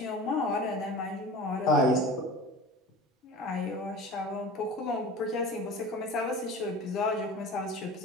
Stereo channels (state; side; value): normal; both; correlation 0.36